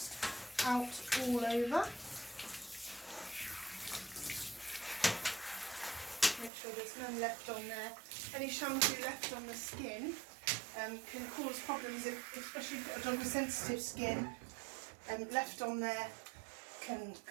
out all over, make sure there's none left on there. Any shampoo left on the skin can cause problems, especially if you've got a dog with sensitive skin. Left on there can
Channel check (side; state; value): left; drops out; at 6.5 s